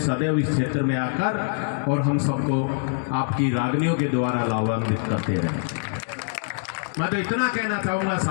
सदैव इस क्षेत्र में आकर, और हम सबको आपकी रागनियों के द्वारा लाभान्वित करते रहे। मैं तो इतना कहना चाहूंगा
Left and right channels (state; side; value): silent; right; digital silence